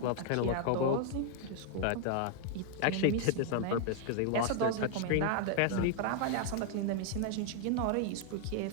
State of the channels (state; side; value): different; both; correlation 0.00